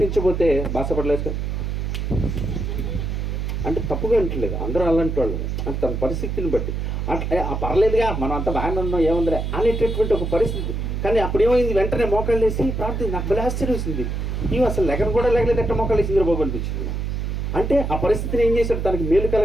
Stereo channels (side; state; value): right; noise; hum, 2 dB below the sound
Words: బాసపడలేదు అంటే తప్పుగా అంటలేదు. అందరూ అలాంటి వాళ్ళు అంటే తన పరిస్థితిని బట్టి అట్లా పర్లేదుగా మనం అంతా బాగానే ఉన్నాం ఏముందిలే అనేటటువంటి ఒక పరిస్థితి. కానీ అప్పుడు ఏమైంది? వెంటనే మోకాళ్ళు వేసి ప్రార్థన. నాకు బలి ఆశ్చర్యం వేసింది. ఇవి అసలు లెగన కూడా లేగలేదు, ఎట్ట మోకాళ్ళు వేసి నిద్రపోబు అనిపించింది. అంటే ఆ పరిస్థితిని ఏం చేశాడు? తనకి మేలు